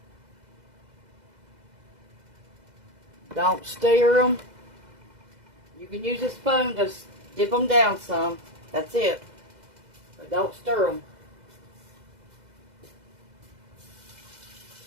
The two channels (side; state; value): left; late; 2.0 ms